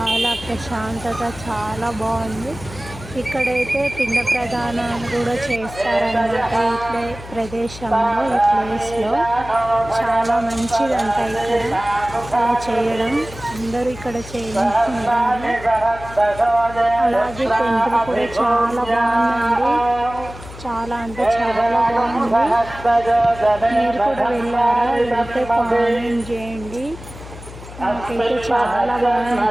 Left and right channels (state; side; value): noise; left; hum, 15 dB below the sound